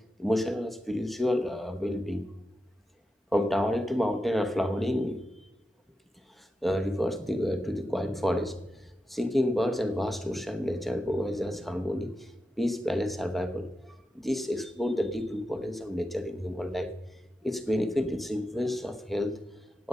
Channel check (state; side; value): normal; both; correlation 0.89